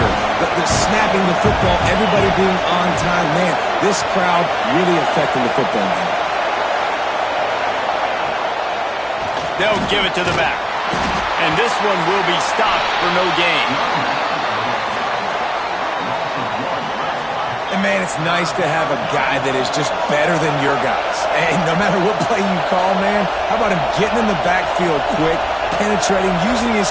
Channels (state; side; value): identical; both; correlation 1.00